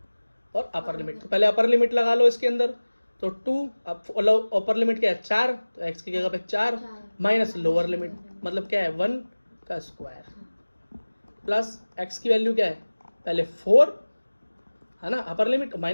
और अपर लिमिट। तो पहले अपर लिमिट लगा लो इसके अंदर, तो 2 अपर लिमिट क्या है 4, तो x की जगह पे 4 माइनस लोअर लिमिट मतलब क्या है 1 का स्क्वायर, प्लस x की वैल्यू क्या है पहले 4 है ना, upper limit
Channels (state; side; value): inverted; both; correlation -1.00